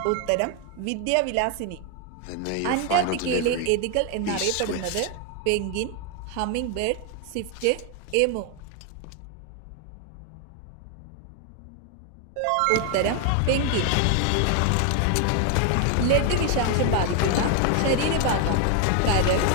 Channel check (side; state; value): both; different; correlation 0.01